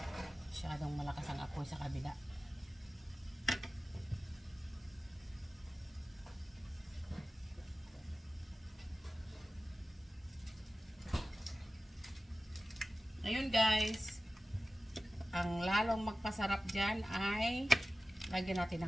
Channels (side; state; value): both; normal; correlation 0.95